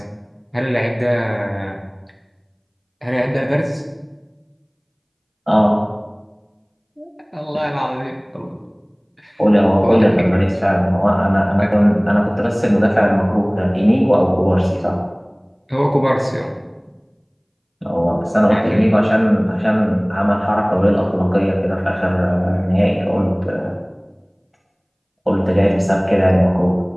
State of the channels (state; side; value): identical; both; correlation 1.00